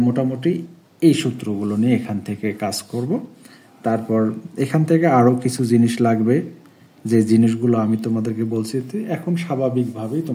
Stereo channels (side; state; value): both; identical; correlation 1.00